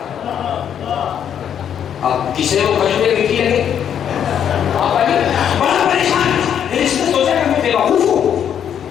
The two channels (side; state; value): right; quieter; 8.9 dB